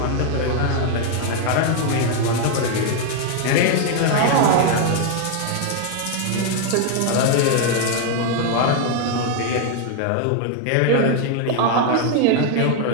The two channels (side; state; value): both; different; correlation 0.00